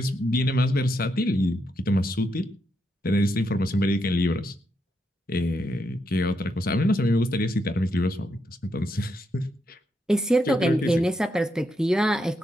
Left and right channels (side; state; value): both; normal; correlation 0.81